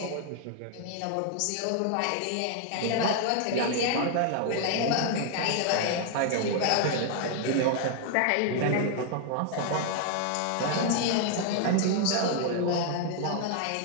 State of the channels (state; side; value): different; both; correlation 0.00